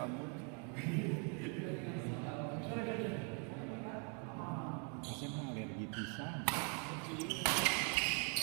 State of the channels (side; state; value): left; quieter; 38.5 dB